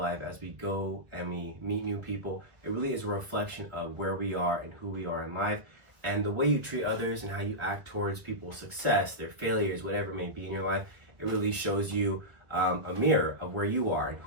as we go and we meet new people, it really is a reflection of where we are and who we are in life. And the way you treat others and how you act towards people's success, their failures, whatever it may be in your life, it really shows you a mirror of where you are and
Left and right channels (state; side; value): late; left; 1.3 ms